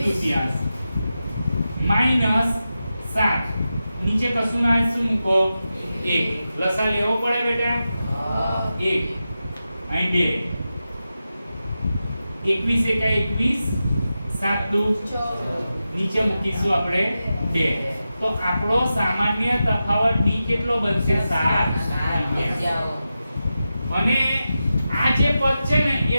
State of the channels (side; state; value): both; inverted; correlation -0.91